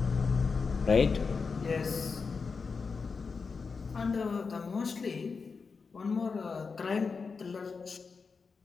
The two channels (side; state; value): right; quieter; 5.0 dB